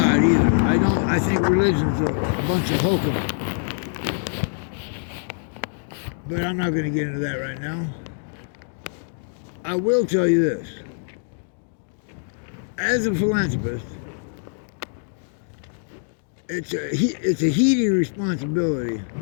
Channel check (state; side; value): silent; right; digital silence